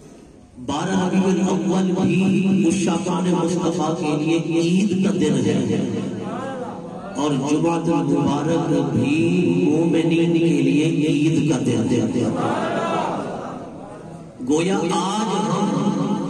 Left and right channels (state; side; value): identical; both; correlation 1.00